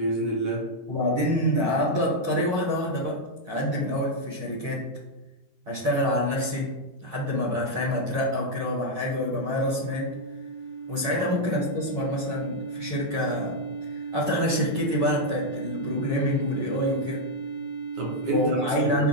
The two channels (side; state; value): left; late; 9.7 ms